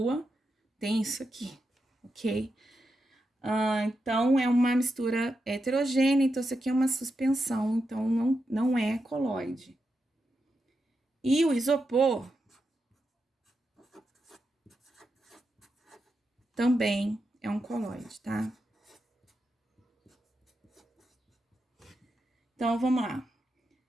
tem isso aqui, ok? Então, é uma mistura heterogênea, então isso aqui é uma suspensão, então não é coloide. E o isopor também é um coloide, tá? Então, vamos lá.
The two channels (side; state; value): both; normal; correlation 0.87